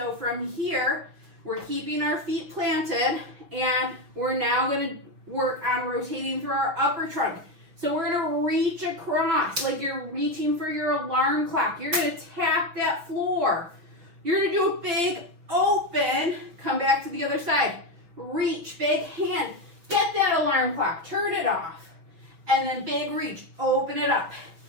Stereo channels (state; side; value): late; left; 6.0 ms